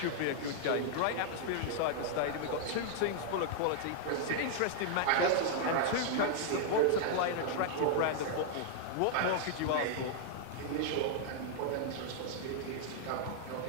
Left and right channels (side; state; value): both; different; correlation -0.01